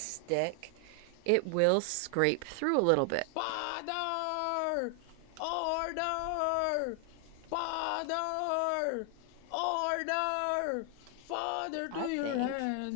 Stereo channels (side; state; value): both; different; correlation 0.00